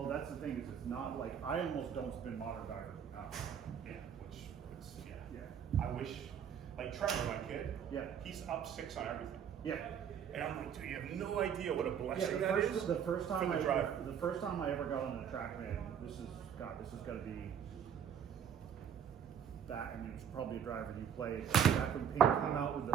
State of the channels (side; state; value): left; quieter; 8.3 dB